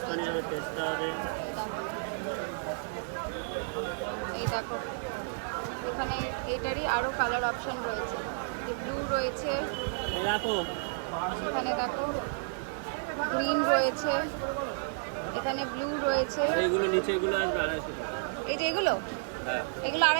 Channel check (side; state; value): left; silent; 57 dB below the other